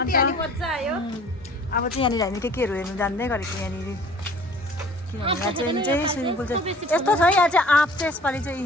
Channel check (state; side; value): normal; both; correlation 0.50